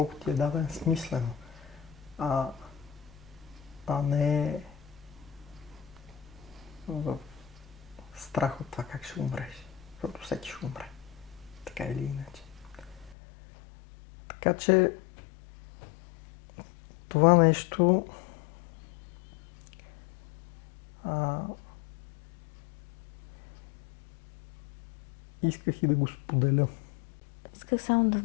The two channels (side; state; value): right; drops out; at 13.2 s